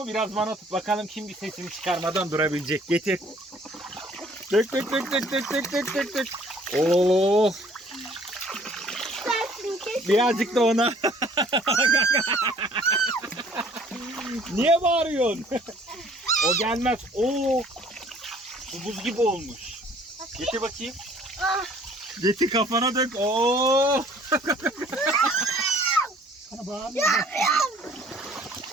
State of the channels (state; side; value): normal; both; correlation 0.56